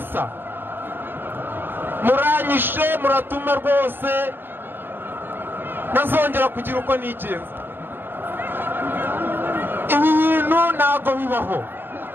muranyishe muratuma rwose ntazongera kugira uko nigenza ibi bintu ntabwo bibaho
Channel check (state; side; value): late; left; 0.099 ms